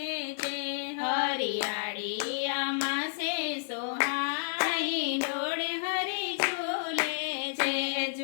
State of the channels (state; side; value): silent; right; digital silence